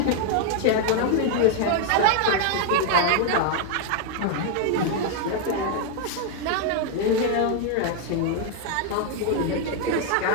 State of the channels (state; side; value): different; both; correlation 0.00